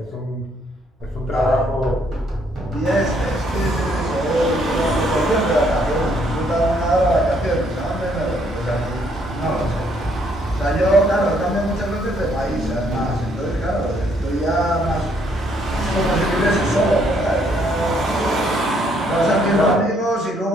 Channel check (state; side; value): normal; both; correlation 0.68